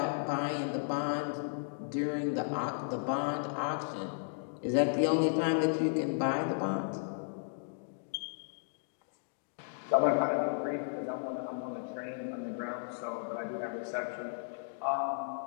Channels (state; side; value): silent; right; digital silence